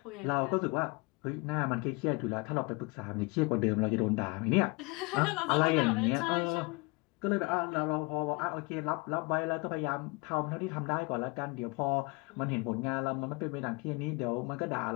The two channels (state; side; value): quieter; right; 27.6 dB